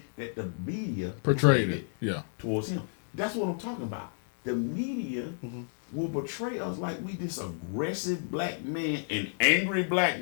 that the media portrayed it towards him. That's what I'm talking about. The media will portray us like we this aggressive black man and angry black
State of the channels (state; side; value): silent; right; digital silence